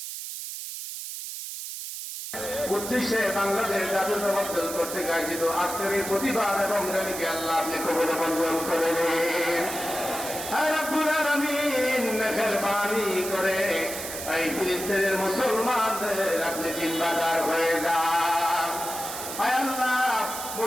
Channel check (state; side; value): noise; right; hiss, 7 dB below the sound